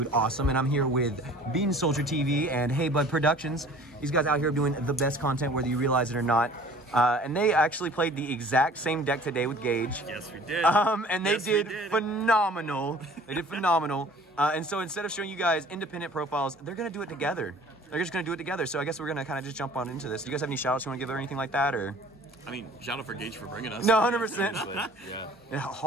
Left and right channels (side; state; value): both; normal; correlation 0.49